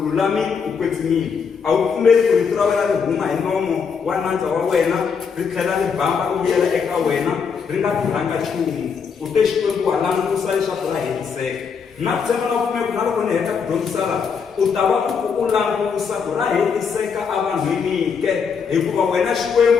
ukwetsimile. A wu pfumeli ku rito ra wena ri huma hi nomo wa nandza wa wena, ri tlhela ri bamba ri vuyela eka wena, ri nga tirhanga nchumu. U te Xikwembu wa langusa leswaku ra hetiseka. Na ku tshemba na pfumela na loko ni heta ku dyondzisa laha, u ta va u langusa ku ra hetiseka evanhwini ke, hikuva wena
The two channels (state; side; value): quieter; right; 6.1 dB